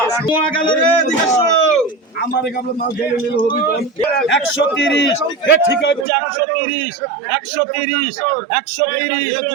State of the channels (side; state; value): left; drops out; at 6.1 s